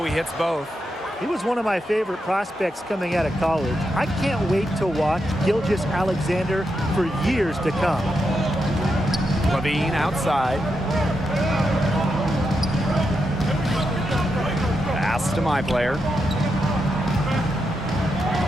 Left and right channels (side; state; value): both; normal; correlation 0.85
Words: he hits both. He was one of my favorite prospects coming out of college. I can't wait to watch Gilgeous-Alexander for years to come. Levine outside. Pass to my player.